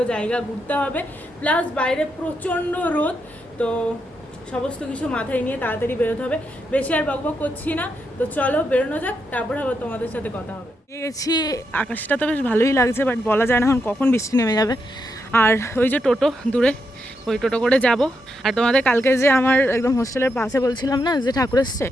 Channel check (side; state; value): both; normal; correlation 0.82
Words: জায়গা ঘুরতে হবে, প্লাস বাইরে প্রচণ্ড রোদ। তো সমস্ত কিছু মাথায় নিয়ে তাড়াতাড়ি বেরোতে হবে। বেশি আর বকবক করছি না, তো চলো বেরোনো যাক, তারপরে আবার তোমাদের সাথে কথা হবে। গেছি, আকাশটা তো বেশ ভালোই লাগছে, বাট বলা যায় না এখন কখন বৃষ্টি নেমে যাবে। আর ওই যে টোটো দূরে, ওই টোটো করে যাব। আর তোমাদের কালকে যে আমার একদম হোস্টেলের পাশে বলছিলাম না যে ঠাকুর এসছে,